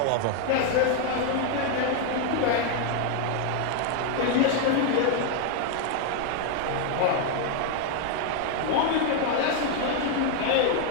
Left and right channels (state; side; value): different; both; correlation 0.00